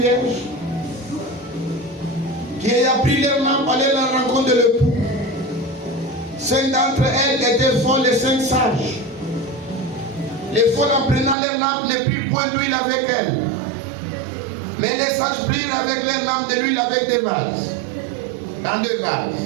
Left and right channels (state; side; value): drops out; left; at 11.4 s